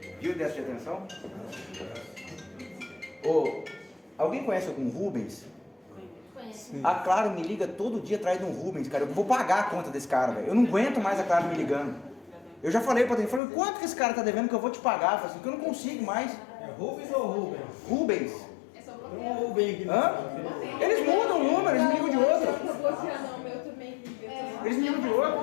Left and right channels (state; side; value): drops out; right; at 13.4 s